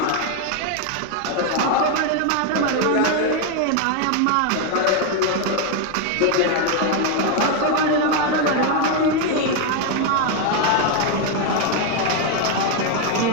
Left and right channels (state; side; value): different; both; correlation 0.01